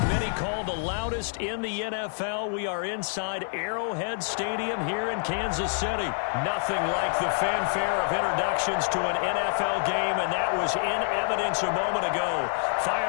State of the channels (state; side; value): silent; right; digital silence